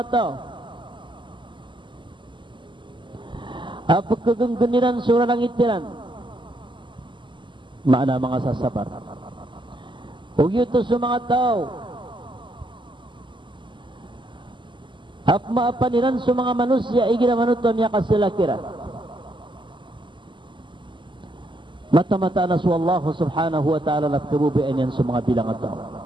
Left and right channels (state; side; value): late; left; 0.24 ms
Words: tao apa kegenggeniran surah langitiran mana mga sasabar ug yutos sa mga tao ap maapaniran sa mga manusia igira manuton niya kasilakira mata-mata na sa Allah subhanahu wa ta'ala na kabubian yan sa mga bilang at tao